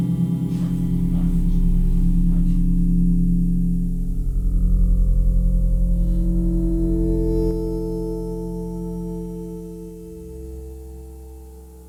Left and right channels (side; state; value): both; identical; correlation 1.00